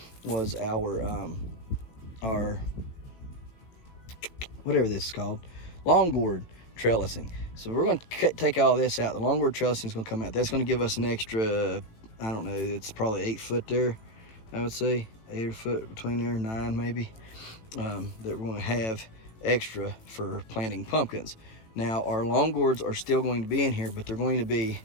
our whatever this is called, long gourd trellising. So we're going to take all this out. The long gourd trellising is going to come out. That's going to give us an extra, I don't know, it's probably 8 foot there, I would say. 8 foot between there, 9 maybe, that we're going to have extra for planting pumpkins. Now, our long gourds are still going to be in here, but they're going to be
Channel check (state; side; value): late; right; 18 ms